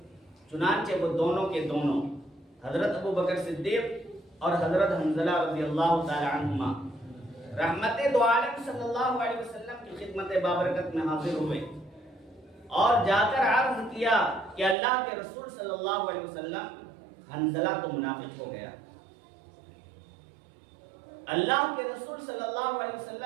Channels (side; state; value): left; drops out; at 14.8 s